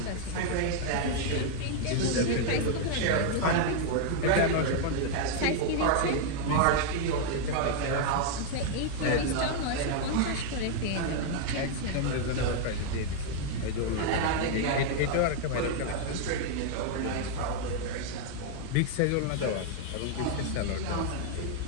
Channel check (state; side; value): different; both; correlation 0.00